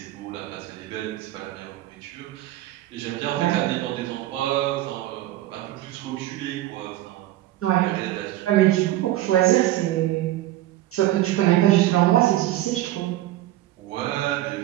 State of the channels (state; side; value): quieter; left; 15.1 dB